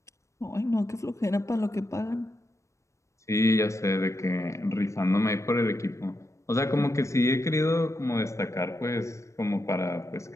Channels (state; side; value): late; right; 0.15 ms